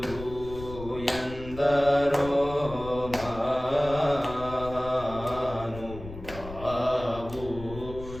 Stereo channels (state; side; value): noise; left; rumble, 13 dB below the sound